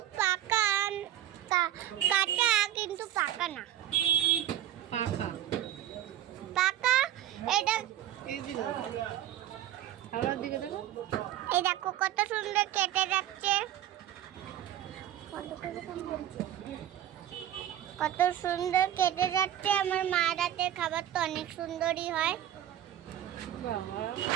পাকা, কাঁচা কিন্তু পাকা না। পাকা পাকা এটা। এই দিল খাবার দিকে দেখো। এই দেখো কত সুন্দর কেটে যাচ্ছে, কত সুন্দর কেটে যাচ্ছে। আমার মা রাতের খাবার তো অনেক সুন্দরই হয়। বাবা,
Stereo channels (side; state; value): left; quieter; 11.8 dB